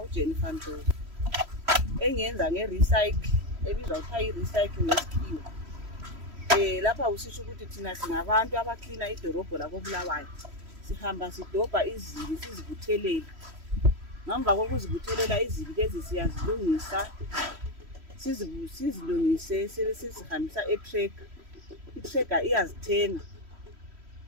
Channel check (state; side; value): late; left; 3.1 ms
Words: uJennifer Ndlovu engiyenza nge-recycle ebizwa kuthiwa i-recycle ngesikhiwa. Lapha usisho ukuthi thina singabantu abaklina idorobho lako Bulawayo. Sihamba sidobha izibi sizibuthelele. Ngemva kokuzibuthelela izibi lezi siyazilungisa, sizilungise sesizihambisa e-tractor. I-tractor iyazithenga.